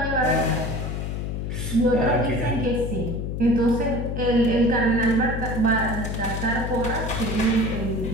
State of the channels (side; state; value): left; noise; hum, 3 dB below the sound